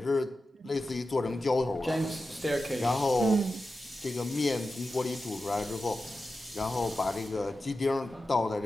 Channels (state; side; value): normal; both; correlation 0.92